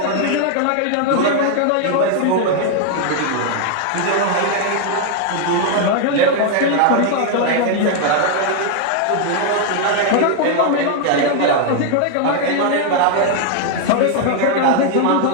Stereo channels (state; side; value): different; both; correlation 0.00